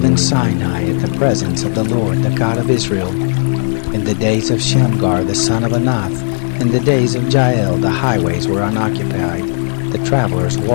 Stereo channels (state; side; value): silent; right; 61 dB below the other